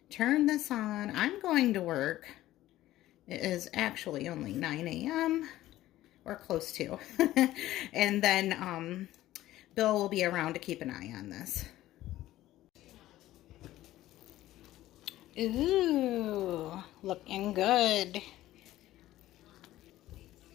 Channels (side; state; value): right; quieter; 15.0 dB